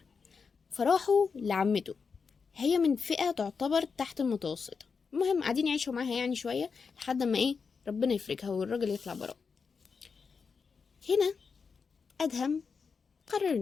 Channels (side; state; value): right; quieter; 5.4 dB